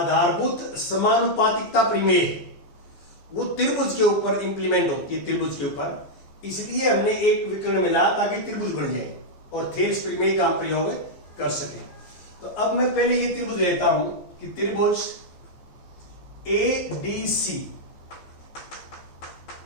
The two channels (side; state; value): right; late; 14 ms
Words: समानुपातिकता प्रमेय है वो त्रिभुज के ऊपर इंप्लीमेंट होती है, त्रिभुज के ऊपर। इसलिए हमने एक विकर्ण मिला ताकि त्रिभुज बन जाए और थेल्स प्रमेय का हम प्रयोग कर सके। तो अब मैं पहले ये त्रिभुज लेता हूं कि त्रिभुज ADC